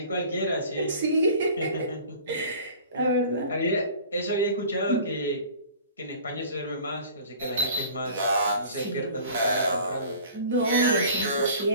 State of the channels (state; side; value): inverted; both; correlation -0.45